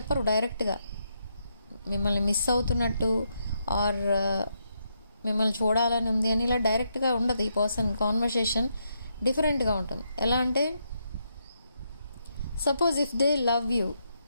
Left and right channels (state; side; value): inverted; both; correlation -0.80